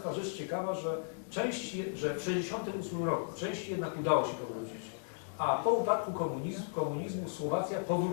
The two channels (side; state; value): right; silent; digital silence